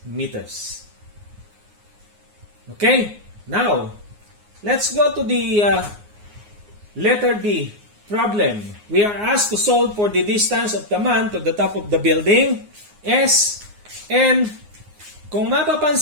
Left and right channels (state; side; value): late; left; 9.6 ms